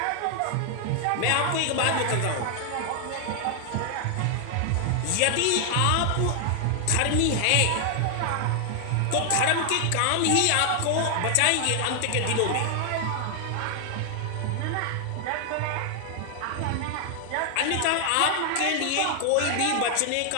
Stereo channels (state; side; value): different; both; correlation 0.00